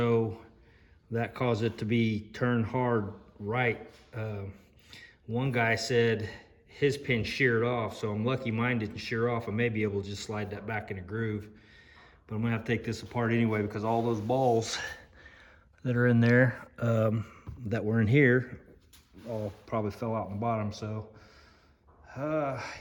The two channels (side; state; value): both; identical; correlation 1.00